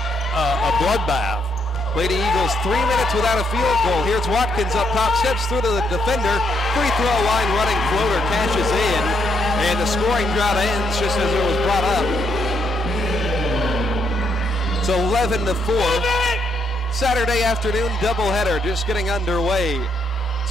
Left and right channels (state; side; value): normal; both; correlation 0.75